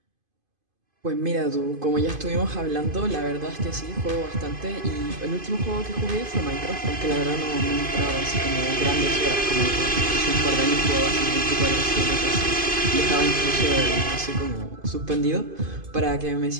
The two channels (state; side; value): late; left; 2.5 ms